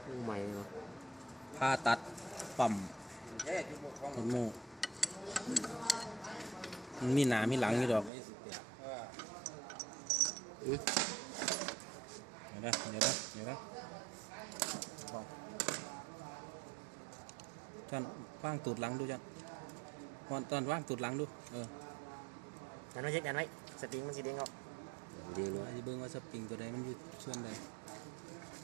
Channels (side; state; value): left; drops out; at 8.1 s